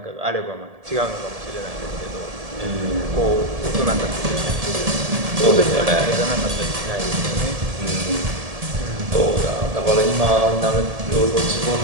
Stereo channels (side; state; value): left; late; 1.7 ms